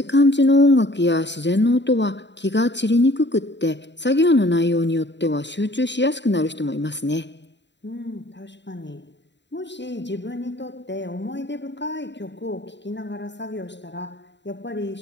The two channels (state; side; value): late; right; 0.52 ms